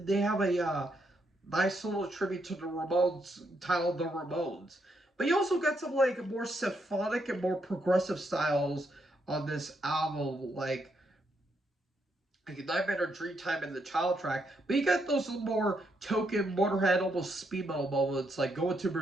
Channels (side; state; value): both; normal; correlation 0.78